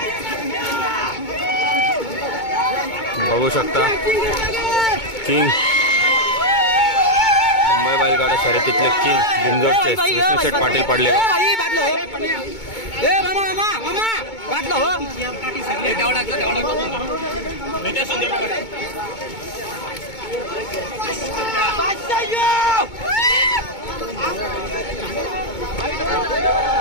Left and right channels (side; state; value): right; late; 2.2 ms